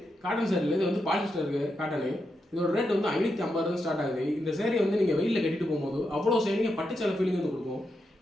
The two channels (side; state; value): both; normal; correlation 0.85